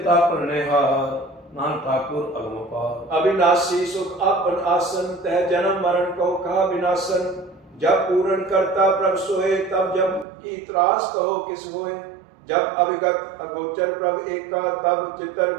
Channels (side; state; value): left; drops out; at 10.2 s